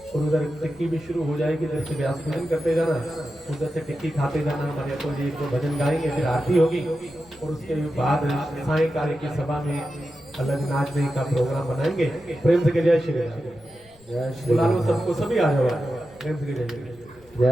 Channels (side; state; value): left; noise; rumble, 28 dB below the sound